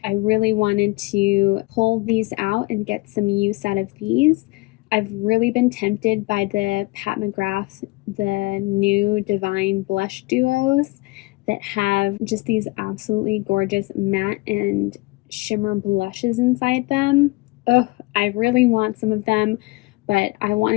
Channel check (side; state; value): right; quieter; 23.2 dB